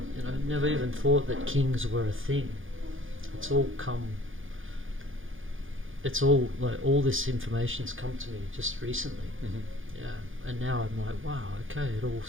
know, never even thought that kings were a thing. It's all like, all this information's come to me just recently. Yeah, and now I'm like, wow, okay, it all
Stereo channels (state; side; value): late; left; 0.58 ms